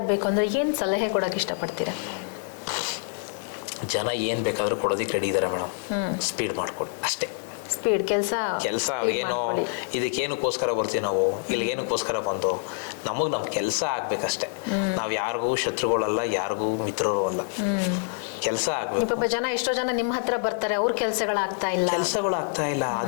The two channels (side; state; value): right; silent; 61 dB below the other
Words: ಅಂದ್ರೆ ಏನ್ ಸಲಹೆ ಕೊಡಕ್ ಇಷ್ಟಪಡ್ತೀರಾ? ಜನ ಏನ್ ಬೇಕಾದ್ರೂ ಕೊಡೋದಿಕ್ಕೆ ರೆಡಿ ಇದಾರೆ ಮೇಡಮ್. ಸ್ಪೀಡ್ ಮಾಡ್ಕೊಡಿ ಅಷ್ಟೇ. ಸ್ಪೀಡ್ ಕೆಲಸ ಏನೋ ಇದಕ್ಕೇನಕ್ಕೋಸ್ಕರ ಬರ್ತೀವಿ ನಾವು, ಇಲ್ಲಿ ಏನಕ್ಕೋಸ್ಕರ ಬಂದು ನಮ್ ಕೆಲಸ ಆಗ್ಬೇಕಷ್ಟೇ. ನಾವ್ ಯಾರಿಗೂ ಶತ್ರುಗಳಲ್ಲ, ಯಾರಿಗೂ ಮಿತ್ರರು ಅಲ್ಲ. ಕೆಲಸ ಆಗ್ಬೇಕು. ಪಾಪ ಜನ ಎಷ್ಟೋ ಜನ ನಿಮ್ಮ ಹತ್ರ ಬರ್ತಾರೆ, ಅವ್ರ ಕೆಲಸಗಳಾಗ್ತಾ ಇಲ್ಲ.